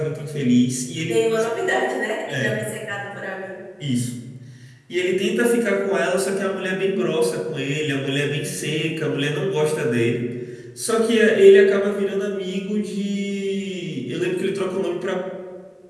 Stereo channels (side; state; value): both; identical; correlation 1.00